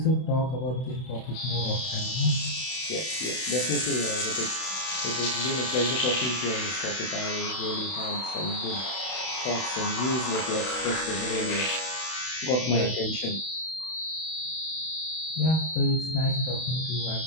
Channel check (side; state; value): right; late; 32 ms